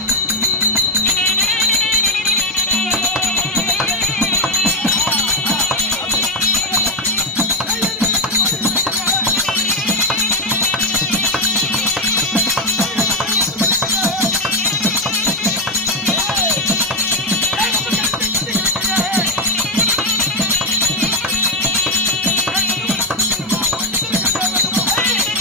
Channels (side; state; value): both; normal; correlation 0.09